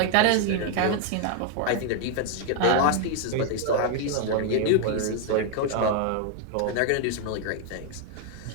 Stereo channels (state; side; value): different; both; correlation 0.00